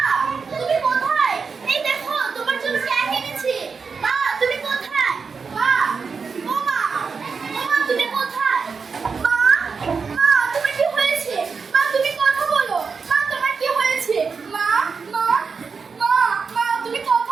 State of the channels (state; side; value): quieter; left; 5.3 dB